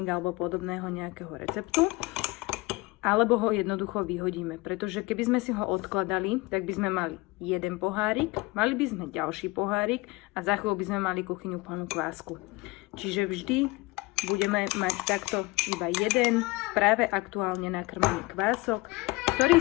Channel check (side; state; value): right; quieter; 23.1 dB